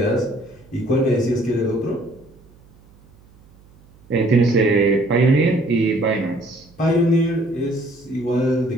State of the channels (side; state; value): right; noise; hum, 28 dB below the sound